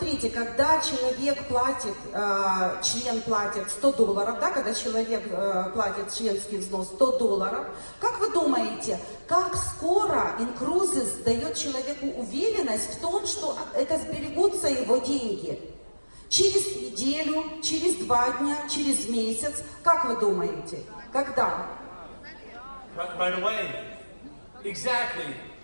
когда человек платит, член платит $100, да, когда человек платит членский взнос $100, как вы думаете, как скоро Incruises дает человеку уверенность в том, что это сберегутся его деньги? Через неделю, через 2 дня, через месяц, как вы думаете, когда? Right away. Exactly.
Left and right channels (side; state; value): both; inverted; correlation -1.00